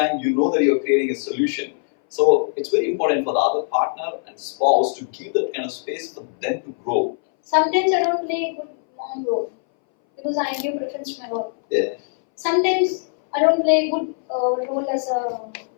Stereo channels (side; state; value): right; silent; 61 dB below the other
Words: you know that you're creating a solution. So it's very important for the other partner and spouse to give that kind of space for them to grow. Sometimes I don't play a good mom role because I give preference to my work. Yeah. Sometimes I don't play a good role as a